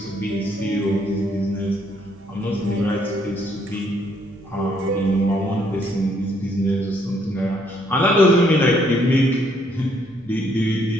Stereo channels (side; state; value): right; noise; hum, 28 dB below the sound